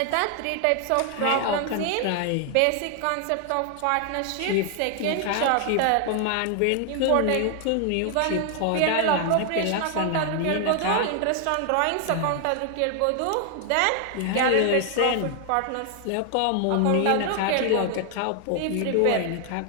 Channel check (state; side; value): different; both; correlation 0.00